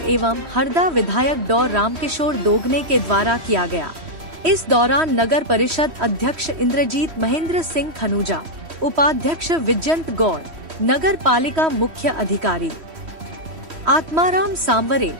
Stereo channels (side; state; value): left; late; 3.1 ms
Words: एवं हरदा विधायक डॉ रामकिशोर दोगने के द्वारा किया गया। इस दौरान नगर परिषद अध्यक्ष इंद्रजीत महेंद्र सिंह खनूजा, उपाध्यक्ष विजयंत गौड़, नगर पालिका मुख्य अधिकारी आत्माराम सांवरे,